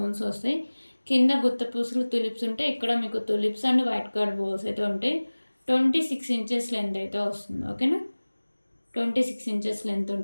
వస్తాయి. కింద గుత్త పూసలు తులిప్స్ ఉంటాయి. ఇక్కడ మీకు తులిప్స్ అండ్ వైట్ కలర్ బోల్స్ అయితే ఉంటాయి. 26 ఇంచెస్ లెంత్ అయితే వస్తుంది. ఓకేనా? 26 ఇంచెస్ లెంత్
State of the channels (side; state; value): both; inverted; correlation -1.00